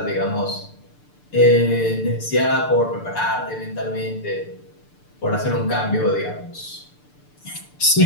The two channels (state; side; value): late; right; 6.8 ms